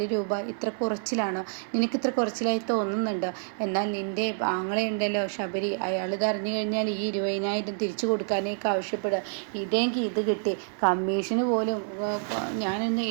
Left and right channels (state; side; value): silent; left; digital silence